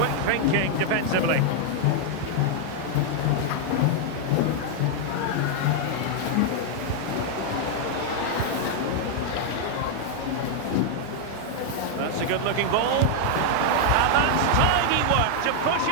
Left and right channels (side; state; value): both; different; correlation 0.00